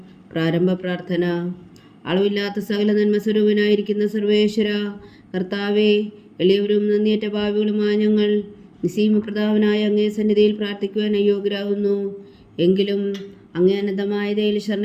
പ്രാരംഭ പ്രാർത്ഥന. അളവില്ലാത്ത സകല നന്മ സ്വരൂപനായിരിക്കുന്ന സർവേശ്വര കർത്താവേ, എളിയവരും നന്ദിയേറ്റ പാപികളുമായ ഞങ്ങൾ നിസ്സീമപ്രതാപനായ അങ്ങേ സന്നിധിയിൽ പ്രാർത്ഥിക്കുവാൻ അയോഗ്യരാകുന്നു. എങ്കിലും അങ്ങേ അനന്തമായ ദയയിൽ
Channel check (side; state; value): both; identical; correlation 1.00